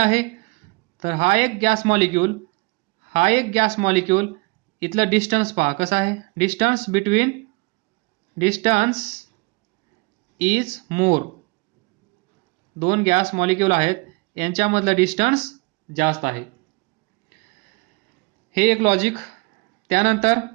तर हा एक गॅस मॉलिक्यूल, हा एक गॅस मॉलिक्यूल, इथलं डिस्टन्स पहा कसं आहे? Distance between, distance is more, दोन गॅस मॉलिक्यूल आहेत यांच्यामधलं डिस्टन्स जास्त आहे. हे एक लॉजिक. त्यानंतर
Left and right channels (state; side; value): quieter; left; 27.1 dB